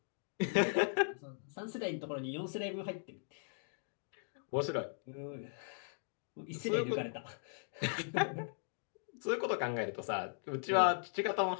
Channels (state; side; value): silent; right; digital silence